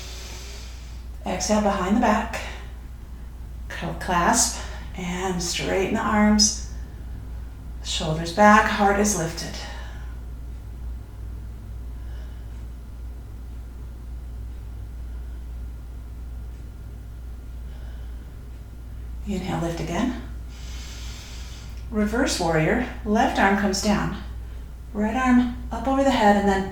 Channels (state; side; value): identical; both; correlation 1.00